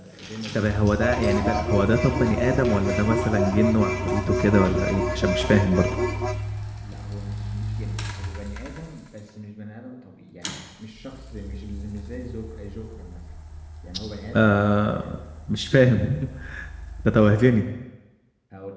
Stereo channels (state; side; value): identical; both; correlation 1.00